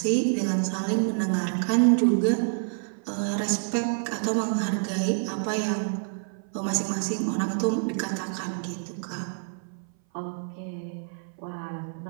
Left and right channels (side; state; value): left; silent; 58 dB below the other